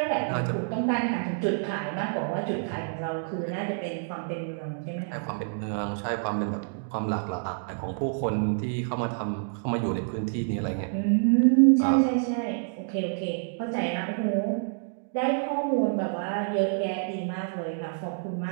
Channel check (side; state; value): left; silent; digital silence